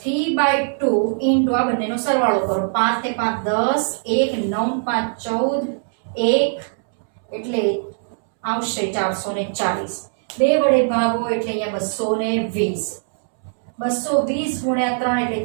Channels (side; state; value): left; silent; 65 dB below the other